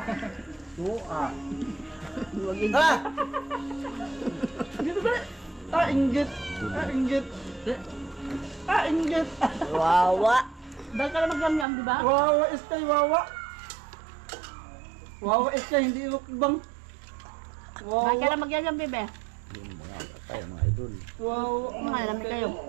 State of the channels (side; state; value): left; drops out; at 11.7 s